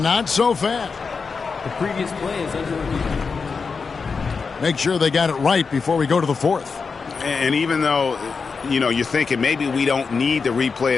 not so fast. The previous play is under review. Make sure they got it right before we go to the 4th. And even though, you know, you're thinking maybe we don't need the replay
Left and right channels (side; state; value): right; quieter; 5.0 dB